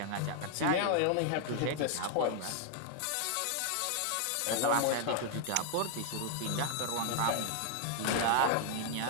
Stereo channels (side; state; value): both; different; correlation 0.00